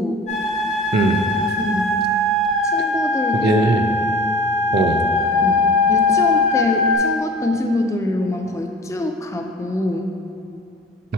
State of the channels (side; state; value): both; normal; correlation 0.40